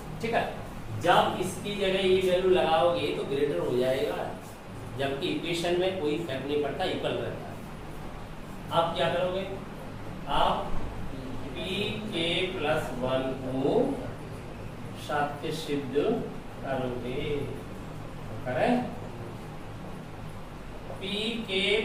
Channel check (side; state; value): both; identical; correlation 1.00